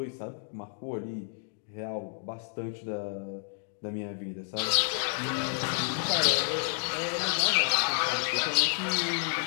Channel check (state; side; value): silent; right; digital silence